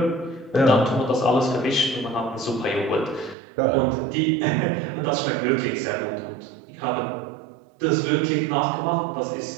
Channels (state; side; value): drops out; left; at 3.4 s